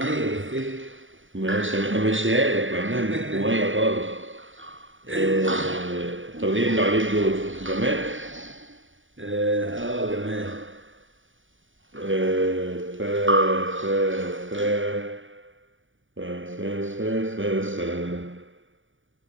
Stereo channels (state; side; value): late; left; 0.57 ms